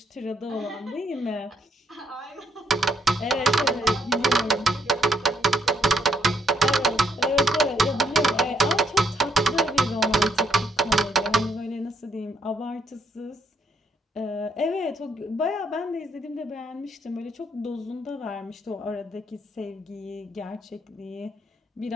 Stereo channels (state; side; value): normal; both; correlation 0.74